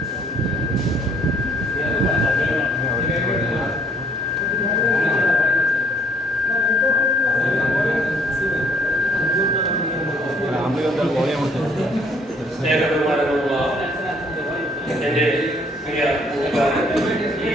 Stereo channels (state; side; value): normal; both; correlation 0.64